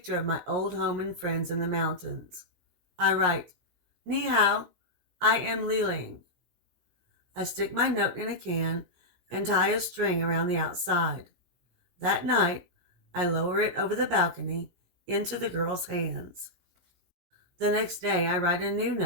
of my old home and friends in the mountains. I write, Ni hao, I am Liling. I stick my note in a can and tie a string around the outside. That night, I lower it over the balcony into the girl's hands. The next day, I write a new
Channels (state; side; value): late; left; 17 ms